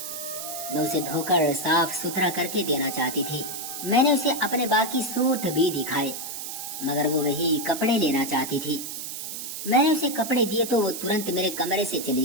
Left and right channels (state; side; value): noise; right; hiss, 7 dB below the sound